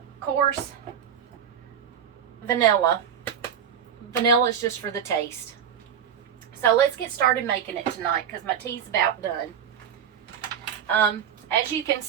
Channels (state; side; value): quieter; left; 8.4 dB